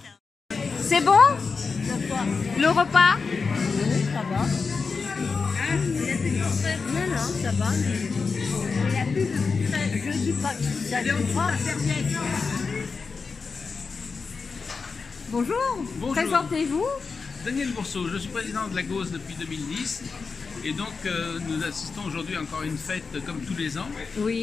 C'est bon? Le repas? Oui, ça va. Non, non, ça va. Il n'y a plus de frais. Je dis pas que ça ne pas. Bonjour. Bonjour. Présentez-vous. Daniel Bourseau, je suis président de la GOS depuis 2010 et donc nous assistons aujourd'hui encore à une fête comme tous les ans.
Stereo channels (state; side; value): quieter; right; 4.8 dB